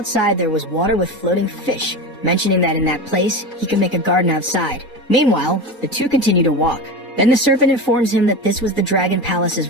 there was water with floating fish, mentioning that in that place, he could make a garden outside. Meanwhile, the two continue to walk. Then the serpent informs him that this was the Dragon Palace's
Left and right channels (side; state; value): both; normal; correlation 0.24